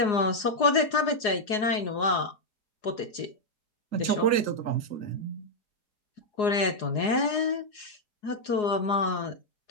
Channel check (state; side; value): late; right; 4.8 ms